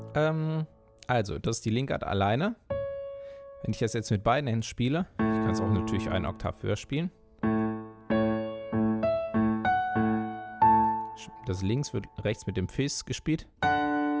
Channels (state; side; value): identical; both; correlation 1.00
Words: also das ist die Linkart alleine. Wenn ich das jetzt mit beiden Händen spiele, ich kann es auch natürlich einen Oktav höher spielen. Das links wird rechts mit dem Fis gespielt.